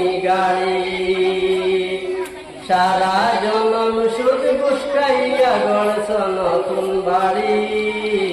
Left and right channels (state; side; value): identical; both; correlation 1.00